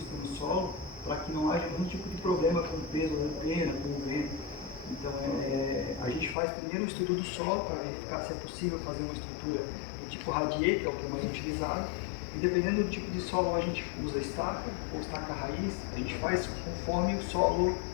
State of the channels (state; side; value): drops out; right; at 6.4 s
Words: no solo para que não haja nenhum tipo de problema com o peso da antena, com o vento. Então a gente faz primeiro o estudo do solo para verificar se é possível fazer uma estrutura do tipo radier, que é o que é mais utilizado. E dependendo do tipo de solo, a gente usa estaca ou estaca raiz. A gente faz conforme o solo,